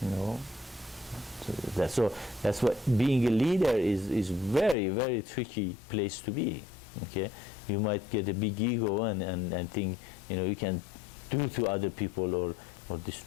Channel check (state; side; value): drops out; right; at 4.8 s